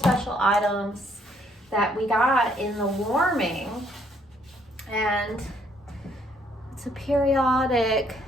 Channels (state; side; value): normal; both; correlation 0.67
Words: items that we got in the warming. And it's a periodic